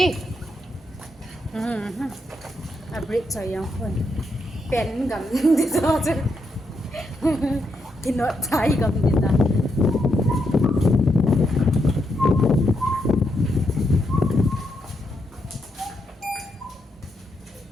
break cho yang pun pen gam di so chứ thì nó trái gam di ta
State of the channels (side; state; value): both; normal; correlation 0.81